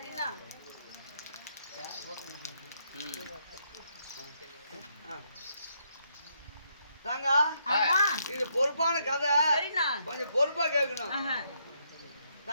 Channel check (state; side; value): inverted; both; correlation -0.75